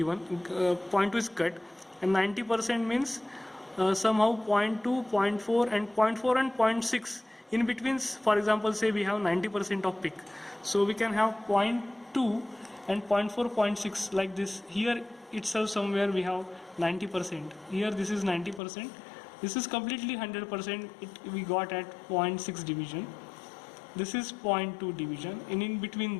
0.2 is cut, and 90% means somehow 0.2, 0.4 and 0.4 and 0.6. In between, for example, say we have 90% of peak. So we can have 0.2 and 0.4, 0.6 like this. Here itself somewhere we have 90%. Here this is 90%. This is completely 100%. We got at 0.6 division. This is 0.2 division, and in between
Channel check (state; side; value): drops out; right; at 18.6 s